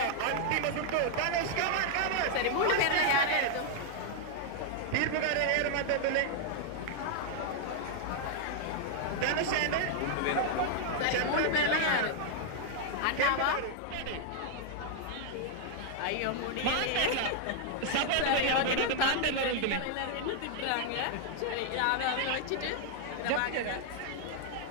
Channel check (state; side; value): different; both; correlation 0.00